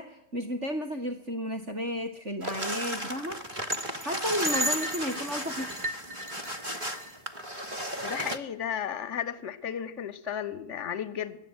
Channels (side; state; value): left; late; 3.4 ms